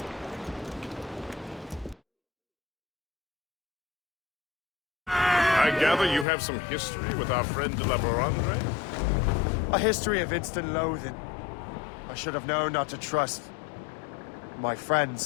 I gather you have some history with our friend de la Barandre? A history of instant loathing. I should have known not to trust my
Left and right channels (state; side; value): drops out; right; at 6.2 s